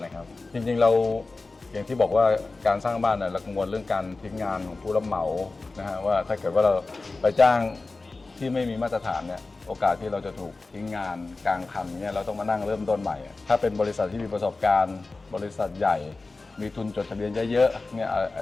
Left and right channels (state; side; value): quieter; right; 3.5 dB